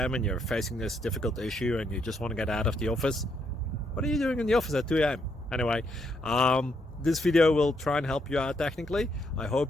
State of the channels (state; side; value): normal; both; correlation 0.75